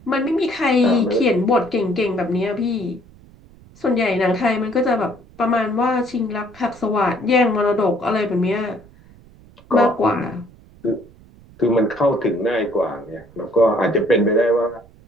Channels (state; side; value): noise; right; rumble, 25 dB below the sound